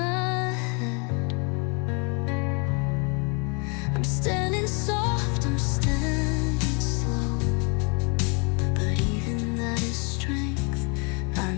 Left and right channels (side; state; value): right; quieter; 34.1 dB